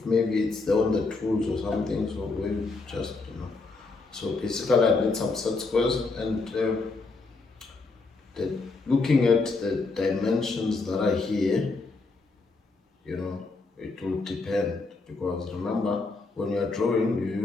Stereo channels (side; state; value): right; quieter; 3.8 dB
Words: maybe it's there on the tools or something, so we just, so basically I need some set squares, and looking at the dimensions that are here, it will depend, because remember, when you are drawing,